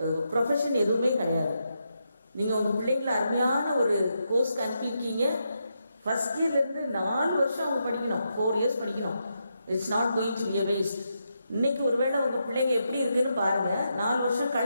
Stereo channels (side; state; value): both; inverted; correlation -0.83